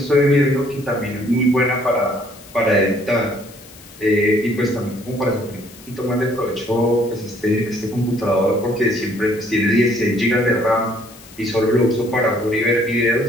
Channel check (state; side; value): noise; left; hiss, 22 dB below the sound